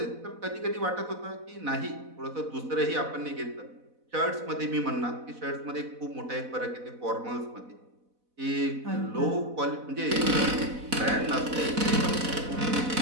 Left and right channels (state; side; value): late; left; 4.0 ms